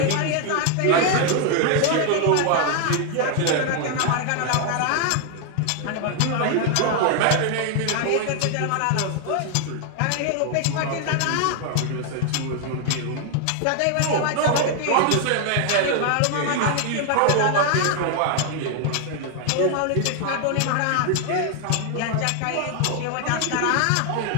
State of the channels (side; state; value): both; different; correlation 0.00